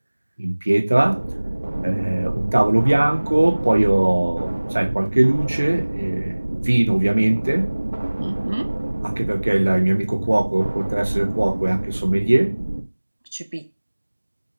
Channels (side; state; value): both; inverted; correlation -1.00